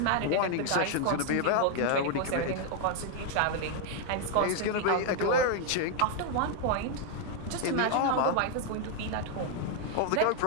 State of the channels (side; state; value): both; different; correlation 0.00